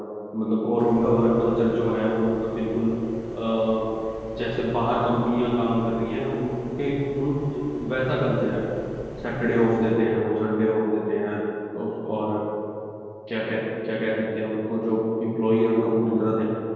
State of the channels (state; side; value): identical; both; correlation 1.00